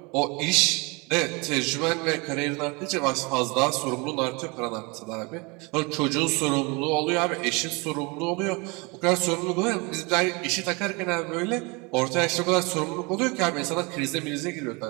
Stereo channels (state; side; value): quieter; left; 28.3 dB